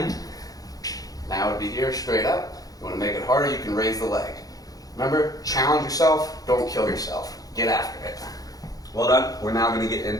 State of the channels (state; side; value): late; right; 0.18 ms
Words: now it would be here, straight up. You want to make it harder, you can raise the leg. Remember, challenge yourself, don't kill yourself. Get after it. Well done. We're now going to get